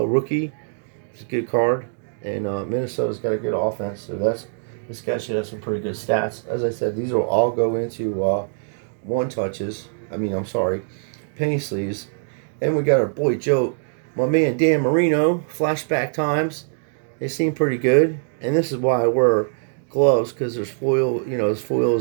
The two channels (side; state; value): left; silent; digital silence